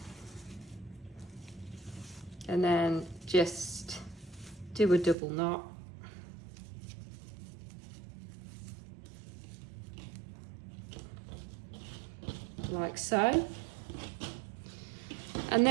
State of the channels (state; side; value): drops out; left; at 5.2 s